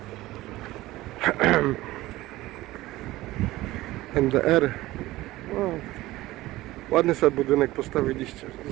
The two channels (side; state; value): left; quieter; 17.5 dB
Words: NDR. O, ładny sobie budynek postawiliście